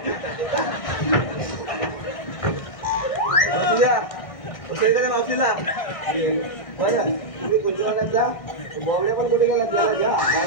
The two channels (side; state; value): right; late; 1.6 ms